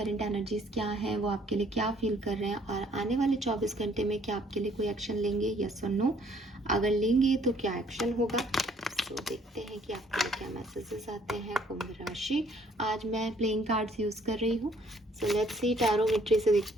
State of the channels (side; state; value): both; normal; correlation 0.62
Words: एनर्जीज क्या हैं, वो आपके लिए क्या फील कर रहे हैं और आने वाले 24 घंटे में क्या आपके लिए कोई एक्शन लेंगे, यस और नो। अगर लेंगे तो क्या एक्शन होगा। सो देखते हैं कि आपके लिए क्या मैसेजेस आते हैं। कुंभ राशि, आज मैं प्लेइंग कार्ड्स यूज़ कर रही हूँ। सो लेट्स सी टैरोमेट्री से